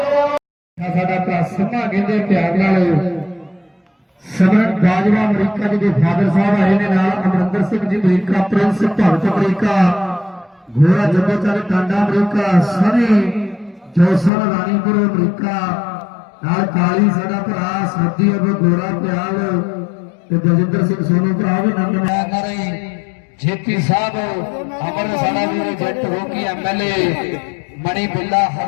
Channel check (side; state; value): right; drops out; at 14.3 s